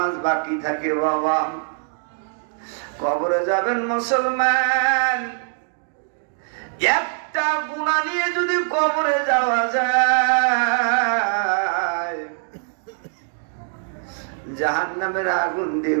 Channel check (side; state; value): left; silent; 64 dB below the other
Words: বাকি থাকে বাবা, কবরে যাবেন মুসলমান, একটা গুনাহ নিয়ে যদি কবরে যাওয়া যায়, জাহান্নামের আগুন দিয়ে